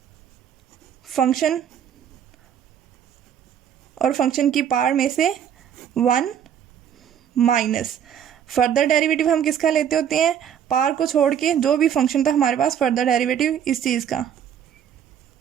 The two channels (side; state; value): left; quieter; 9.1 dB